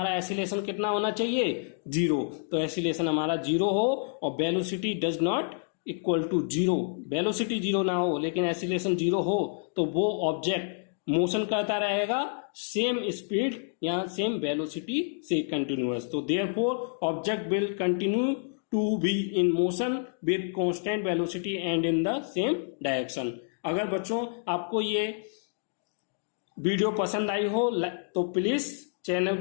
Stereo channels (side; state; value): right; silent; digital silence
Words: एसिलेशन कितना होना चाहिए, जीरो। तो एसिलेशन हमारा जीरो हो और velocity does not equal to zero, velocity zero ना हो लेकिन एसिलेशन जीरो हो, तो वो ऑब्जेक्ट मोशन करता रहेगा सेम स्पीड या सेम वेलोसिटी से कंटिन्यूअस। तो therefore object will continue to be in motion with constant velocity and in the same direction. अगर बच्चों आपको ये वीडियो पसंद आई हो तो प्लीज चैनल